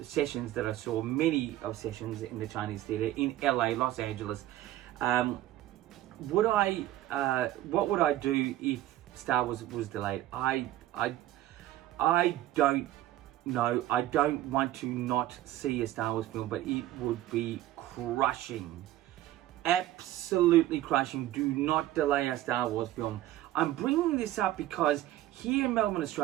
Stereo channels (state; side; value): quieter; left; 14.4 dB